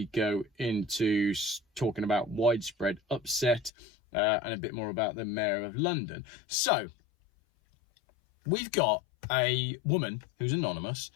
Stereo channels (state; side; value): drops out; right; at 3.7 s